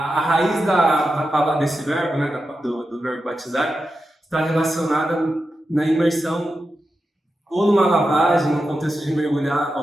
raiz da palavra, desse verbo, né, do verbo batizar, está relacionada na imersão ou numa lavagem, no contexto de mergulhar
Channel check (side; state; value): both; normal; correlation 0.90